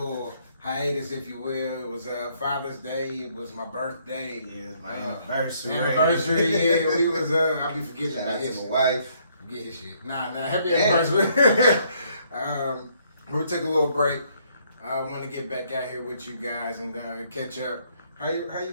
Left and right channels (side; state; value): both; inverted; correlation -0.68